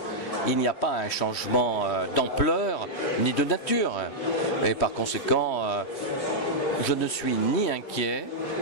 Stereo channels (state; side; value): late; right; 3.2 ms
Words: Il n'y a pas un changement d'ampleur ni de nature. Et par conséquent, je ne suis ni inquiet,